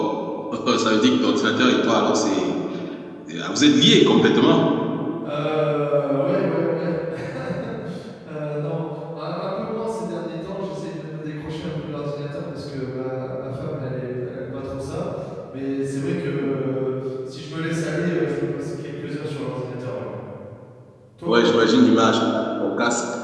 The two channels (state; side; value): identical; both; correlation 1.00